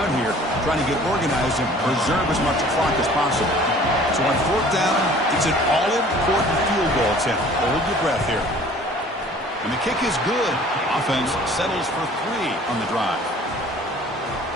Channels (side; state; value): both; normal; correlation 0.50